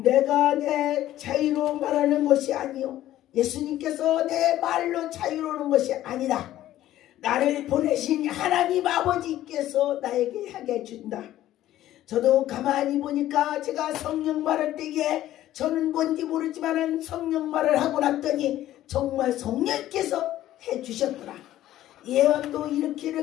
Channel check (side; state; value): right; quieter; 13.6 dB